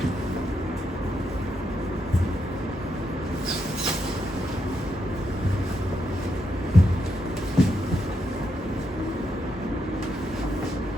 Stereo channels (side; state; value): both; normal; correlation 0.81